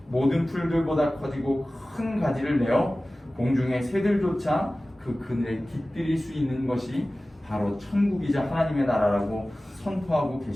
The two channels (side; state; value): both; normal; correlation 0.97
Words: 모든 풀들보다 커지고 큰 가지를 내어 공중의 새들조차 그 그늘에 깃들일 수 있는 것이 바로 천국이자 하나님의 나라라고 선포하고